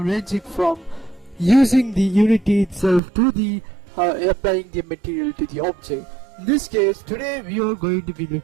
from using the Unity itself to the applying the material to the object. In this case, today we are going to be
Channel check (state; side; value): drops out; left; at 3.0 s